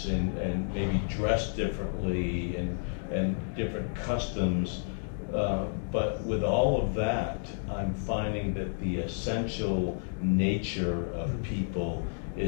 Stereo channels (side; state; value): right; silent; digital silence